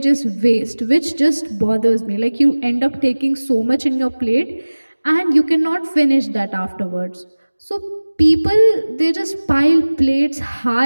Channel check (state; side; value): inverted; both; correlation -1.00